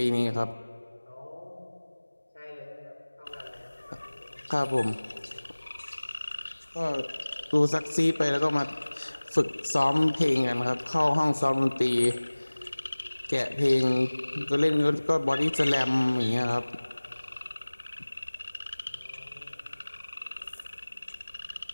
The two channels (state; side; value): inverted; both; correlation -1.00